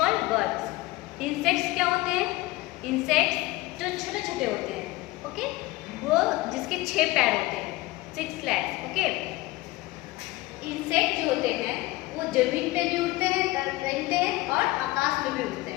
birds. Insects क्या होते हैं, इंसेक्ट्स जो छोटे छोटे होते हैं, ओके, वो जिसके 6 पैर होते हैं, 6 legs, ओके। इंसेक्ट जो होते हैं वो जमीन पे भी उड़ते हैं, रहते हैं और आकाश में भी उड़ते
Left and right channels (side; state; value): right; quieter; 19.5 dB